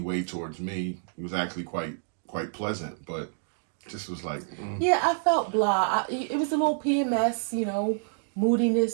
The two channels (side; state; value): left; silent; digital silence